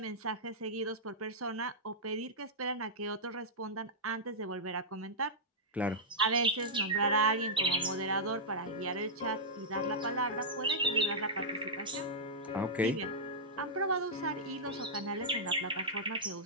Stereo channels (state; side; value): normal; both; correlation -0.10